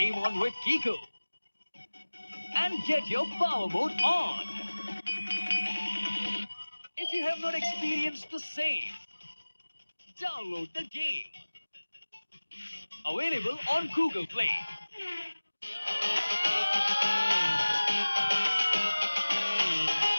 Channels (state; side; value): inverted; both; correlation -1.00